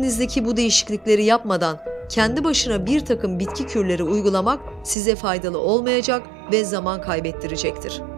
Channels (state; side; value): drops out; left; at 5.0 s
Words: bu değişiklikleri yapmadan kendi başına bir takım bitki kürleri uygulamak size faydalı olmayacak ve zaman kaybettirecektir.